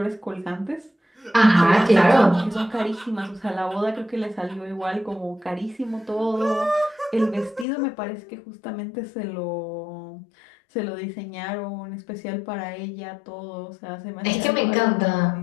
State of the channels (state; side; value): drops out; right; at 7.7 s